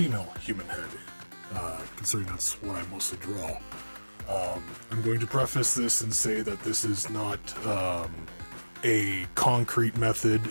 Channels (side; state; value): both; inverted; correlation -1.00